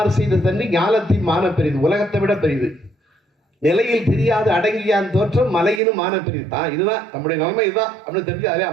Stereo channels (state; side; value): drops out; left; at 5.8 s